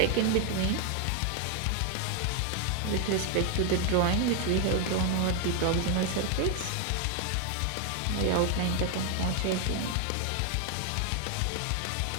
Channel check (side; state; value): both; different; correlation 0.01